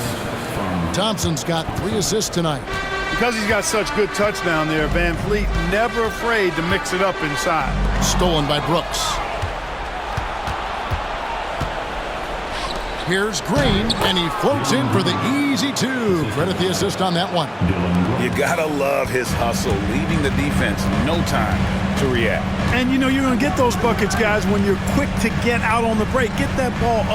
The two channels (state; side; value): identical; both; correlation 1.00